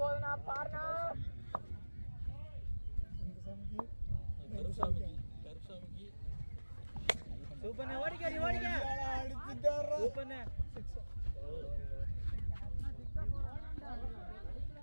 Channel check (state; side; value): inverted; both; correlation -1.00